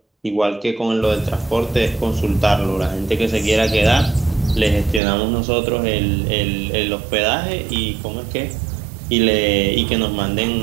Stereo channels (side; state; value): left; drops out; at 5.0 s